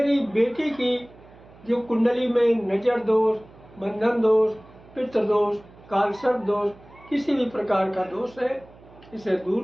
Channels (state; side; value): noise; right; hum, 24 dB below the sound